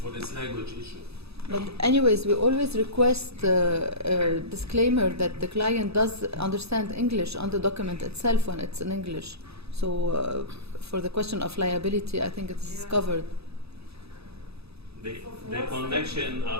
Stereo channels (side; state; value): left; late; 0.78 ms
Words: this language issue. But anyways, we always request a disclaimer that the client does understand English on the document itself when it's in English. So for the question of liability, I think it's covered. The connection